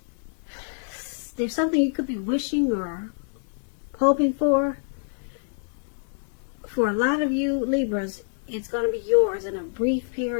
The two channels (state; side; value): silent; right; digital silence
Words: there's something you could be wishing or hoping for. For a lot of you Libras, it's going to be yours in a brief